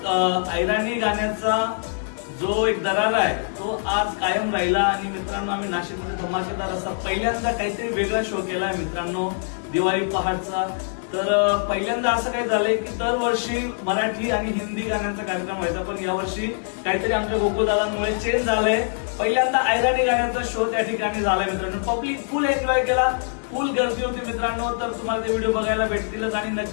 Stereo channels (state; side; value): silent; right; digital silence